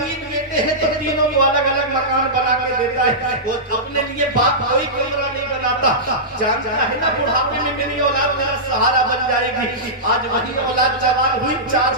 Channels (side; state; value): both; normal; correlation -0.14